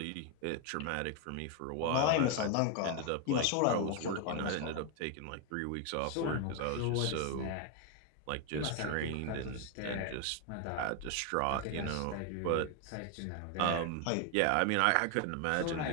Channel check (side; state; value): both; different; correlation 0.01